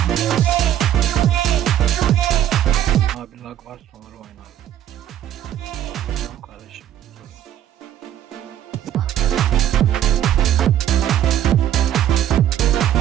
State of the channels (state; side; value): quieter; left; 11.2 dB